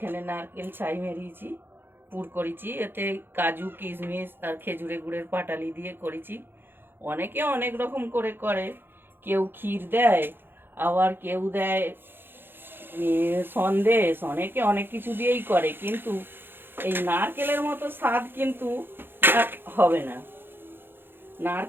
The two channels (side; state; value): left; late; 0.10 ms